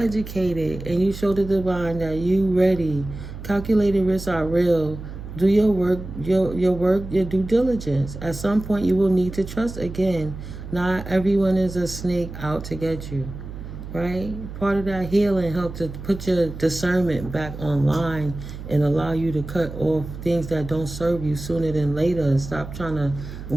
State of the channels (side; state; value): right; noise; hum, 11 dB below the sound